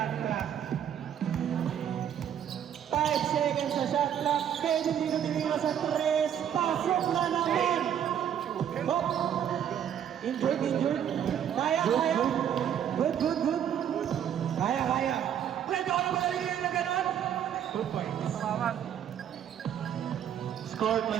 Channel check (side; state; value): left; quieter; 9.4 dB